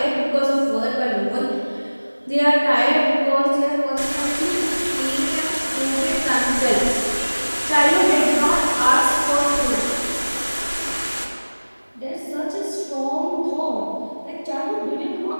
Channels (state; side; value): inverted; both; correlation -1.00